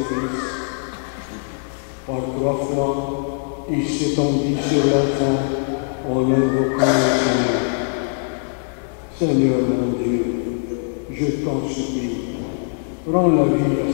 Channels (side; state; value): right; silent; digital silence